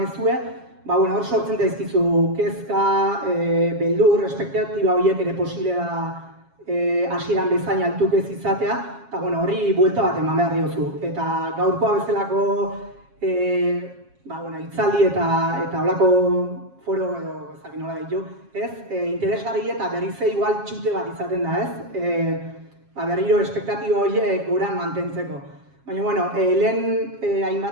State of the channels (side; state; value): left; late; 7.3 ms